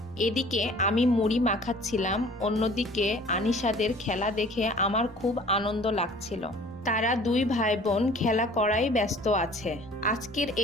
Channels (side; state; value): left; noise; rumble, 24 dB below the sound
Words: এদিকে আমি মুড়ি মাখাচ্ছিলাম, অন্যদিকে আনিশাদের খেলা দেখে আমার খুব আনন্দ লাগছিল। তারা দুই ভাই বোন খেলা করাই ব্যস্ত আছে। আজকের